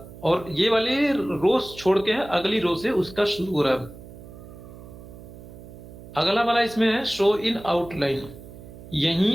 और ये वाले रोज छोड़ के है, अगली रो से उसका शुरू हो रहा है। अगला वाला इसमें है शो इन आउटलाइन।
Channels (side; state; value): right; noise; hum, 16 dB below the sound